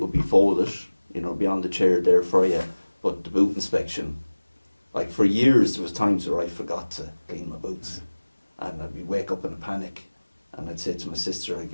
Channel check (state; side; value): inverted; both; correlation -1.00